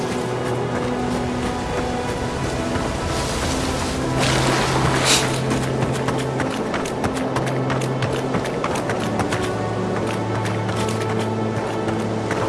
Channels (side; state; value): both; identical; correlation 1.00